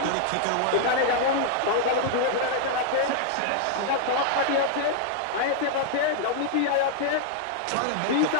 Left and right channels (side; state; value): both; different; correlation -0.01